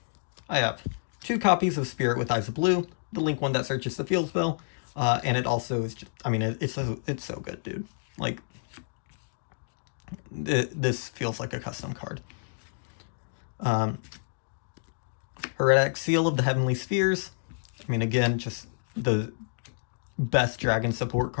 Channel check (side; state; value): right; silent; digital silence